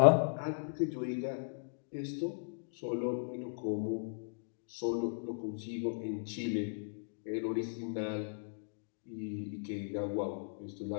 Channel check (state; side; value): silent; right; digital silence